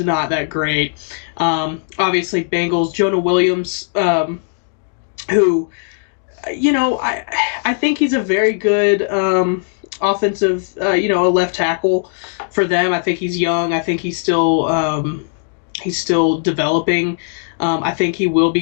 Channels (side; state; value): right; silent; digital silence